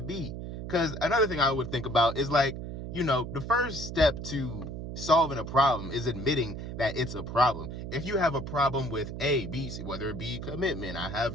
be. Because another thing I would think about is like, the first step to solving a problem is admitting that it's a problem. If you have a problem with A, B, C, whether it be commitment, I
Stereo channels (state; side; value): noise; right; hum, 7 dB below the sound